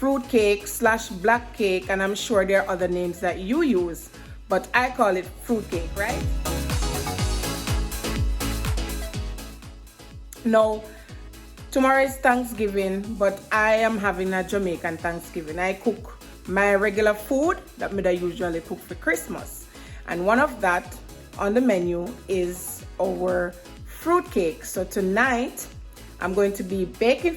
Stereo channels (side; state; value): both; identical; correlation 1.00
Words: cake slash black cake, and I'm sure there are other names that you use, but I call it fruit cake, right? Now, tomorrow is Thanksgiving, but I am having a Jamaican Thanksgiving. I cook my regular food that I usually cook for Christmas. And one of that on the menu is our fruit cake. So tonight, I'm going to be baking